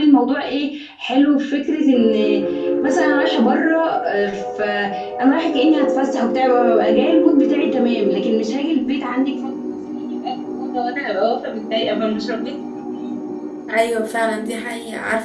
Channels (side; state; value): both; identical; correlation 1.00